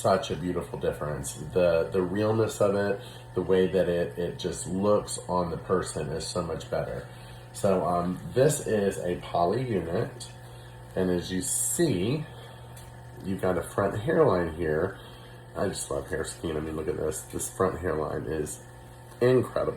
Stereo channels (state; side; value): identical; both; correlation 1.00